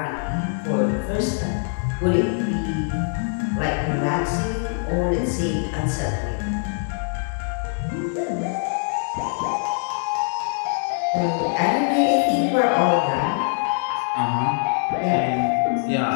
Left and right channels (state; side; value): silent; right; 61 dB below the other